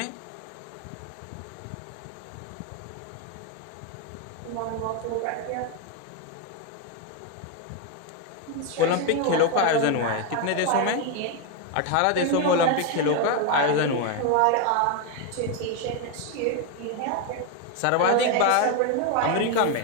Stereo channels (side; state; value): both; different; correlation 0.02